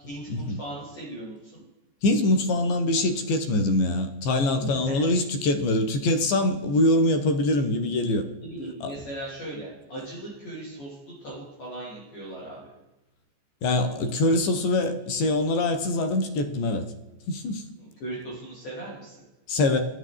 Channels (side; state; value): right; late; 14 ms